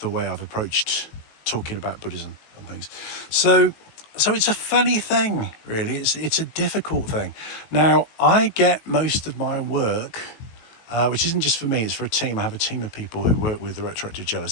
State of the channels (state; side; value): late; right; 18 ms